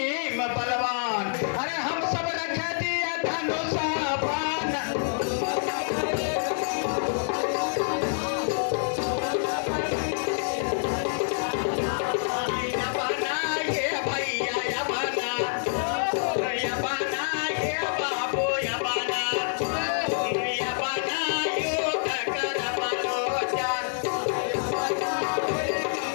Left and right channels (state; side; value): silent; right; digital silence